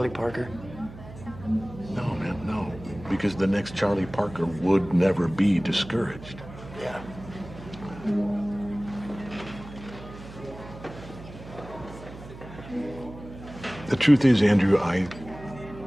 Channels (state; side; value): noise; right; hum, 15 dB below the sound